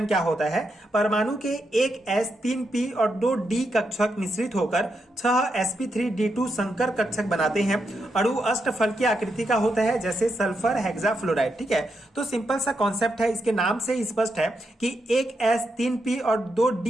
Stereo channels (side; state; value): both; normal; correlation 0.83